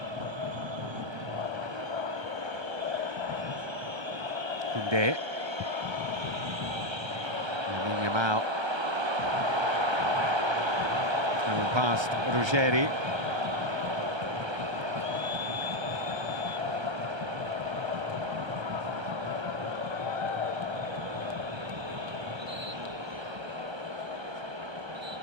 Koundé. Lamine Yamal. Coming past Ruggeri.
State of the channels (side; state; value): left; late; 1.3 ms